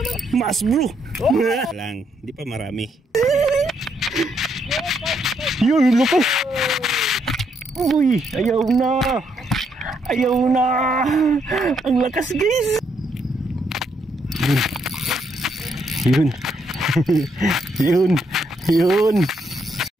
Mas bro. Lang, hindi pa marami. Yun, laki. Uy, ayaw na. Ayaw na. Ang lakas guys. Yun. Yun. Yun.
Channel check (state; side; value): normal; both; correlation 0.75